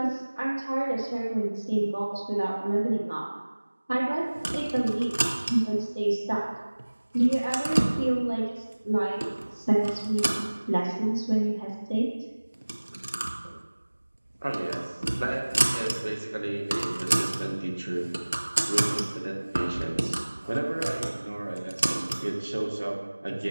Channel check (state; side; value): inverted; both; correlation -1.00